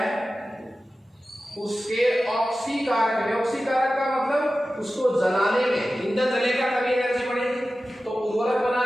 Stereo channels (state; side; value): normal; both; correlation 0.94